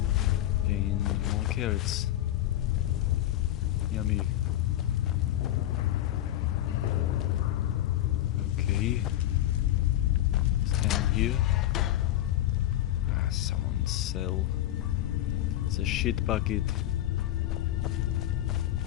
And more carrots. Yummy. Okay. It's down here. Ah, someone sell. It's a shit bucket.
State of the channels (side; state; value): right; quieter; 13.4 dB